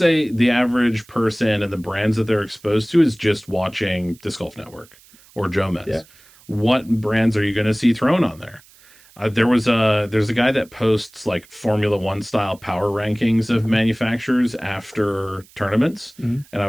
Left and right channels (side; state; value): right; noise; hiss, 27 dB below the sound